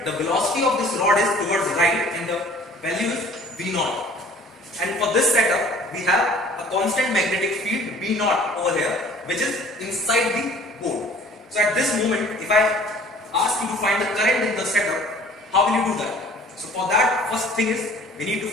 the velocity of this rod is towards right, and the value is V0. And for this setup, we have a constant magnetic field V0 over here, which is inside the board. So at this moment, if I ask you to find the current in the setup, how will you do that? So for that, first thing is we need to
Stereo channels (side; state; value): both; normal; correlation 0.51